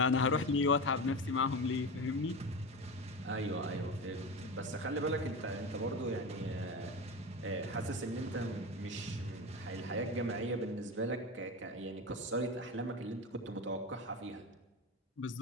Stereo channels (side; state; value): both; normal; correlation 0.23